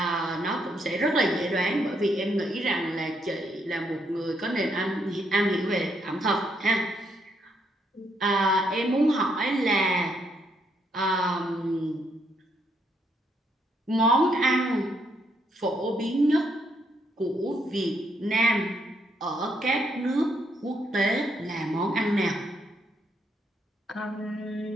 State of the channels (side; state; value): both; normal; correlation 0.74